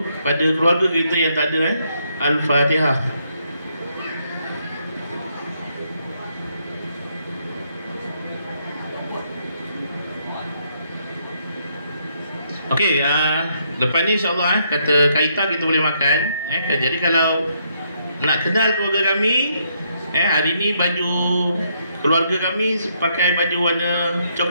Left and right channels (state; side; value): inverted; both; correlation -0.74